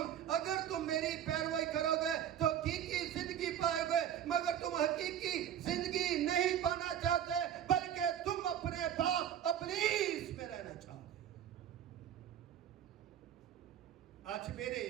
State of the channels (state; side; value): quieter; left; 10.1 dB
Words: اگر تم میری پیروی کرو گے تو حقیقی زندگی پائے گے. مگر تم حقیقی زندگی نہیں پانا چاہتے, بلکہ تم اپنے باپ ابلیس میں رہنا چاہتے. آج میرے